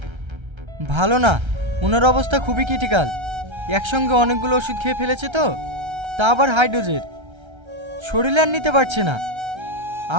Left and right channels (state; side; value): late; left; 1.3 ms